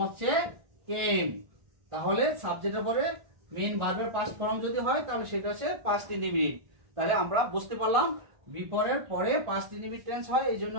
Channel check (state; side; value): late; left; 1.5 ms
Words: হচ্ছে কেম। তাহলে সাবজেক্টের পরে মেইন ভার্বের পাস্ট ফর্ম যদি হয়, তাহলে সেটা হচ্ছে পাস্ট ইনডিফিনিট। তাহলে আমরা বুঝতে পারলাম বিফোরের পরে পাস্ট ইনডিফিনিট টেন্স হয়, এই জন্য